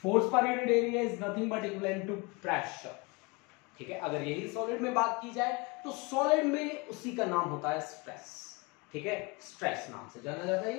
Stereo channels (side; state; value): right; quieter; 27.3 dB